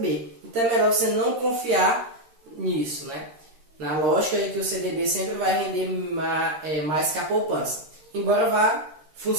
Então, é melhor você não confiar nisso, né? Na lógica de que o CDB sempre vai render mais que a poupança. Embora vá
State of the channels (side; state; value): left; late; 13 ms